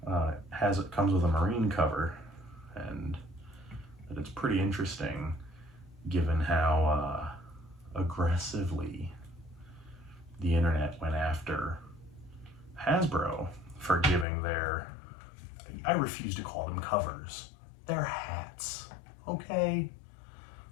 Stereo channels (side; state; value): right; drops out; at 14.2 s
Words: comes with a Marine cover, and that it's pretty interesting given how aggressively the internet went after Hasbro for giving their, I refuse to call them covers, they're hats, okay?